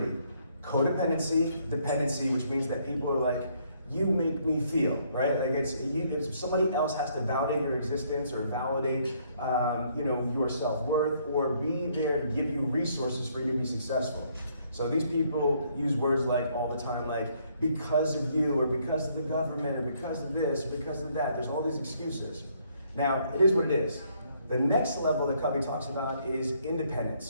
Codependency, dependency, which means that people are like, you make me feel, right? Like if somebody else has to validate your existence or validate, your self-worth, or be there to give you resources for you to be successful. So these people use words like all the time, like because of you, or because of the government, or because of this, or because of that. There's all these excuses. Now, it is what it is. The next level that Covey talks about is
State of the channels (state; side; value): inverted; both; correlation -0.68